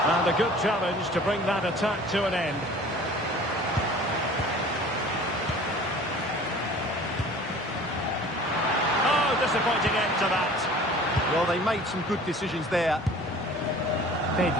And a good challenge to bring that attack to an end. Disappointing end to that. Well, they made some good decisions there.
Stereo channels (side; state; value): both; normal; correlation 0.45